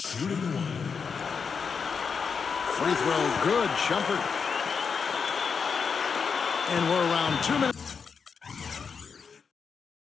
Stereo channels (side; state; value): right; quieter; 5.8 dB